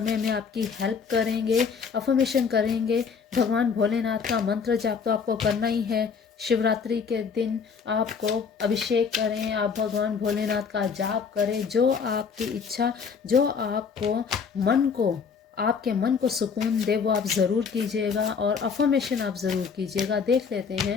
में आपकी हेल्प करेंगे। अफर्मेशन करेंगे, भगवान भोलेनाथ का मंत्र जाप तो आपको करना ही है। शिवरात्रि के दिन आपको अभिषेक करें, आप भगवान भोलेनाथ का जाप करें, जो आपकी इच्छा, जो आपको आपके मन को सुकून दे वो आप ज़रूर कीजिएगा, और अफर्मेशन आप ज़रूर कीजिएगा। देख लेते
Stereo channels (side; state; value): right; quieter; 5.9 dB